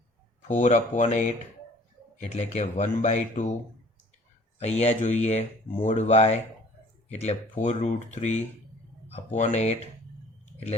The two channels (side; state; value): both; normal; correlation 0.52